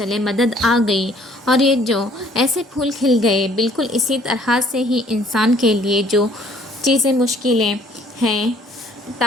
مدد آ گئی۔ اور یہ جو ایسے پھول کھل گئے، بالکل اسی طرح سے ہی انسان کے لیے جو چیزیں مشکلیں ہیں،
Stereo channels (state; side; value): normal; both; correlation 0.60